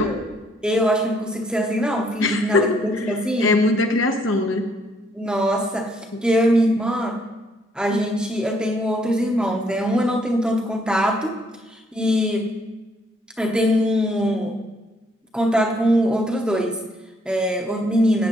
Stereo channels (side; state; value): both; normal; correlation 0.68